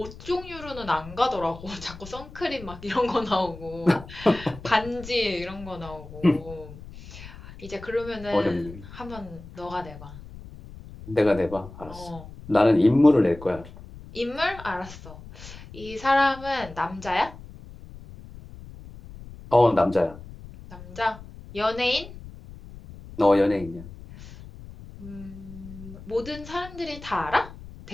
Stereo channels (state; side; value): noise; left; rumble, 16 dB below the sound